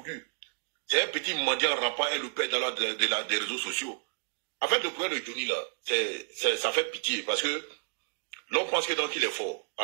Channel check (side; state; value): left; silent; digital silence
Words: lui. C'est un petit mendiant rampant et le père des réseaux sociaux. En fait, le problème de Johnny, là, ça fait pitié parce que l'on pense que donc il est fort,